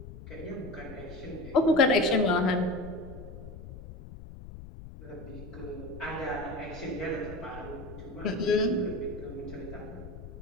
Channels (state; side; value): noise; left; rumble, 13 dB below the sound